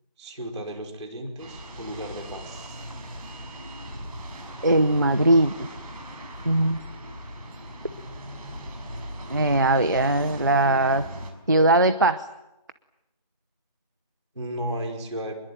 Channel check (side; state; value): both; inverted; correlation -0.49